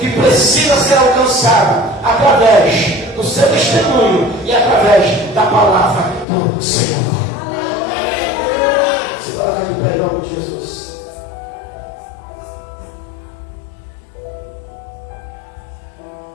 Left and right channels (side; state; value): right; drops out; at 6.2 s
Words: precisa ser alcançada através do seu testemunho e através da palavra do Senhor. Se colocar de pé em nome de Jesus.